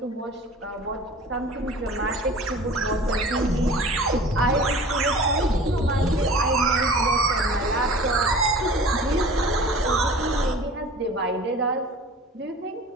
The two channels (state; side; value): normal; both; correlation 0.42